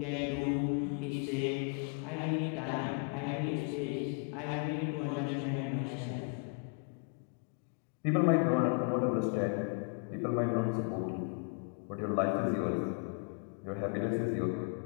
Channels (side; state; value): right; quieter; 39.7 dB